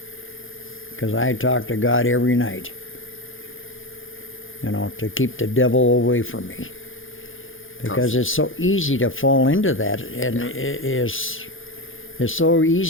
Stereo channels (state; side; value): late; right; 0.58 ms